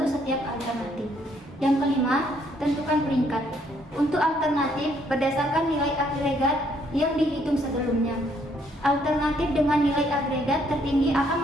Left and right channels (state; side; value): normal; both; correlation 0.68